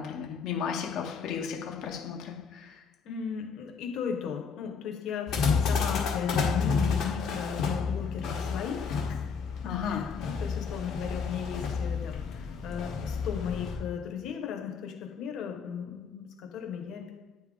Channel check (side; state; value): right; quieter; 5.8 dB